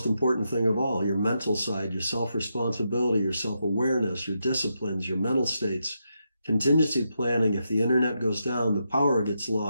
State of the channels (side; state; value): both; inverted; correlation -0.83